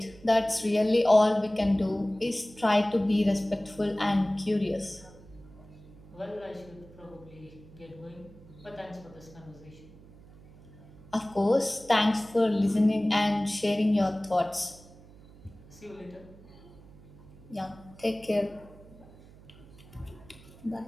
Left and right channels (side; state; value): right; noise; hum, 22 dB below the sound